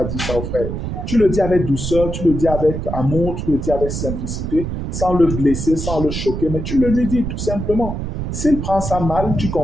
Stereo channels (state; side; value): noise; right; rumble, 4 dB below the sound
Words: dire ça aux frères. Tu le dis avec douceur, tu le dis avec amour, tu le dis avec simplicité, sans le blesser, sans le choquer, mais tu le lui dis tout simplement. S'il prend ça mal, tu